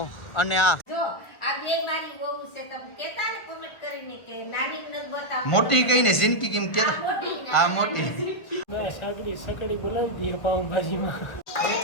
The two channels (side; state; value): right; late; 1.5 ms